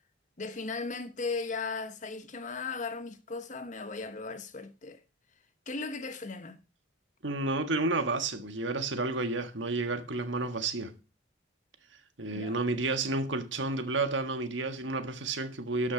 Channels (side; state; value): both; normal; correlation 0.12